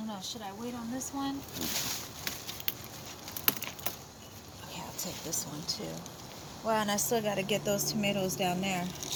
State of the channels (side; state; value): both; identical; correlation 1.00